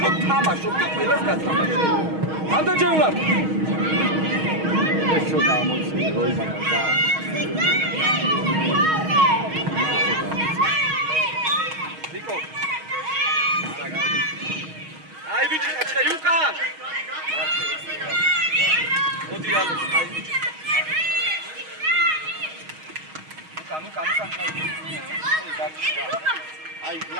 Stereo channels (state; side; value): late; left; 6.3 ms